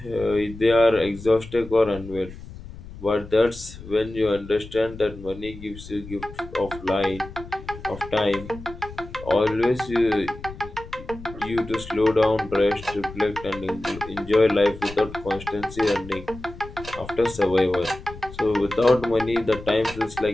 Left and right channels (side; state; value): left; noise; rumble, 15 dB below the sound